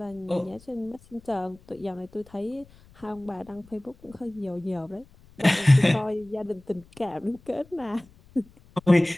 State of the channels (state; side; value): noise; left; rumble, 26 dB below the sound